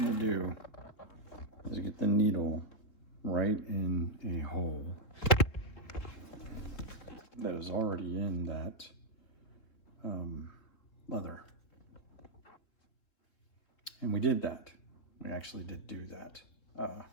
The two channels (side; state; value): right; late; 3.4 ms